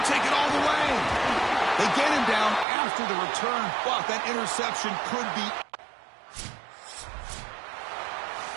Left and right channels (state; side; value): drops out; left; at 2.7 s